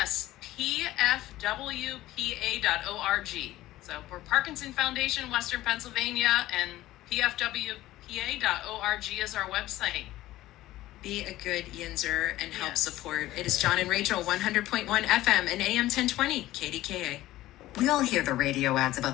pfwpa.org. So for Parkinson Foundation, Western Pennsylvania, and pfwpa.org is our website. Be a good Yinzer and help Yes. support. It is John and Rachel, 100.1 FM and AM 1020, KDKA. We all hear the radio ads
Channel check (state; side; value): quieter; right; 15.8 dB